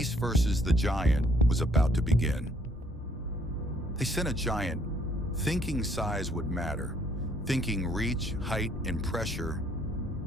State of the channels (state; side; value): normal; both; correlation 0.65